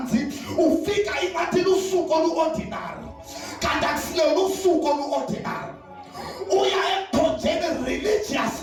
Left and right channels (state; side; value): identical; both; correlation 1.00